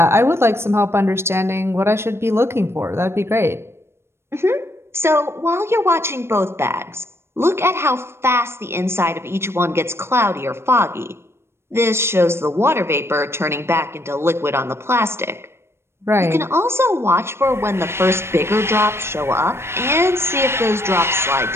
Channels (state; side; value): late; left; 0.12 ms